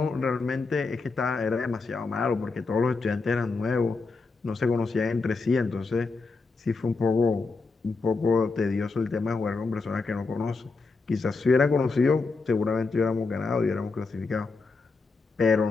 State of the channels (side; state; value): right; quieter; 4.1 dB